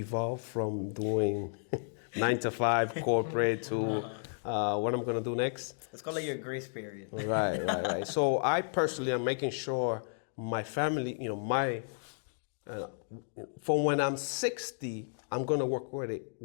from doing 9 to 5 corporate to Right. What I'm gonna do next. Let's call it your grace period. Right. So I personally am making sure my family, from when I'm 60, I'm gonna work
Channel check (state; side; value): silent; right; digital silence